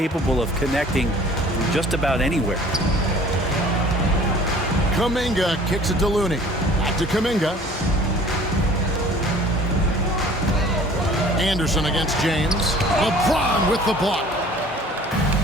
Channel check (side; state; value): both; normal; correlation 0.50